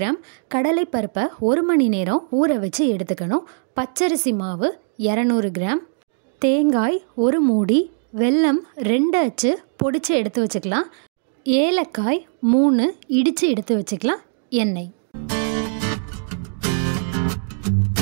கடலைப்பருப்பை 1 மணி நேரம் ஊற வச்சு எடுத்துக்கணும். பச்சரிசி மாவு 200 கிராம். தேங்காய் 1 மூடி. வெல்லம் 2 அச்சு பொடிச்சு எடுத்து வச்சுக்கலாம். ஏலக்காய் 3 இடித்து எடுத்து வச்சுக்கலாம். எண்ணெய்.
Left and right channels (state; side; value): silent; left; digital silence